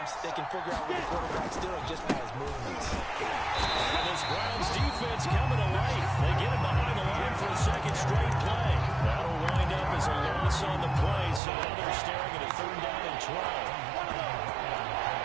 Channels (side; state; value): left; drops out; at 11.4 s